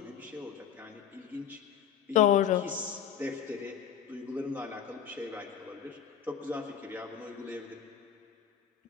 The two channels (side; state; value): right; quieter; 8.7 dB